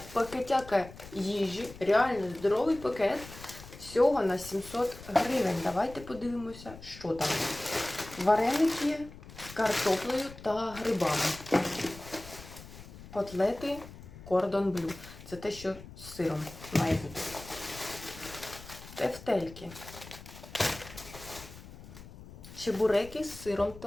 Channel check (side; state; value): left; noise; rumble, 16 dB below the sound